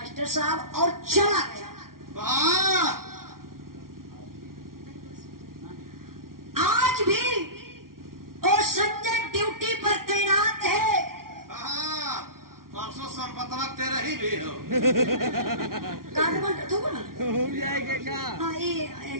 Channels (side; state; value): left; late; 0.92 ms